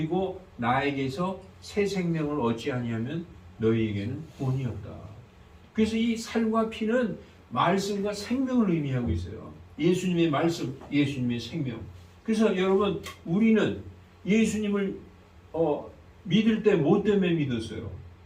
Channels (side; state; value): both; identical; correlation 1.00